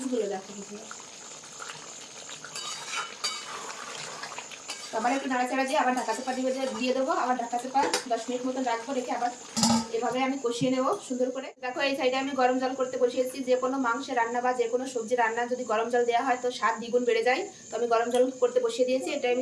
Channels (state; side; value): identical; both; correlation 1.00